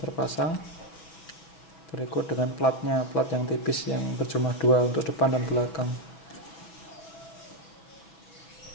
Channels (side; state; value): right; late; 6.0 ms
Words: Berikut dengan platnya, plat yang tipis yang berjumlah 2 untuk depan dan belakang.